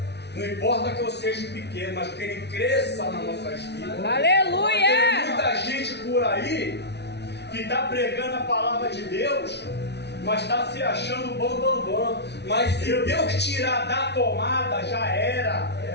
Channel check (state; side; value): late; right; 0.50 ms